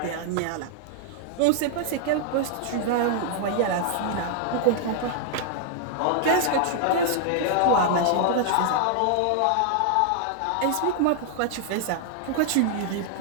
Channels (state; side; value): different; both; correlation -0.01